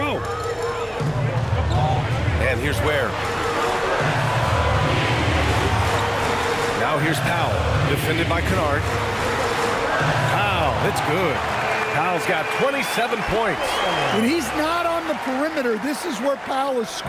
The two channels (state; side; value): identical; both; correlation 1.00